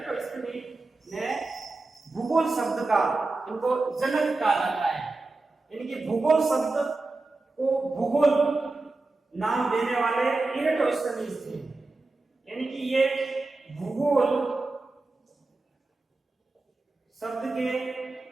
ने भूगोल शब्द का, इनको जनक कहा जाता है। यानी कि भूगोल शब्द को भूगोल नाम देने वाले इरेटोस्थनीज थे। यानी कि ये भूगोल शब्द के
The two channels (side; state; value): left; quieter; 3.3 dB